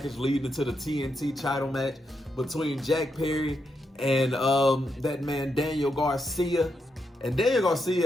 leading to the TNT title match between Jack Perry and that man Daniel Garcia. And Daniel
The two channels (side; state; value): both; normal; correlation 0.82